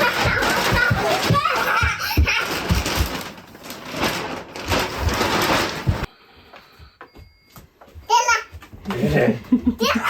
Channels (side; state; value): both; identical; correlation 1.00